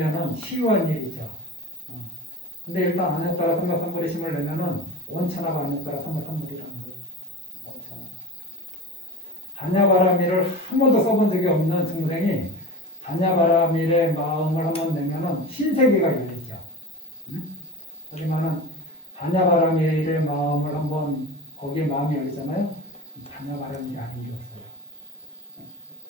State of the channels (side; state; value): both; normal; correlation 0.31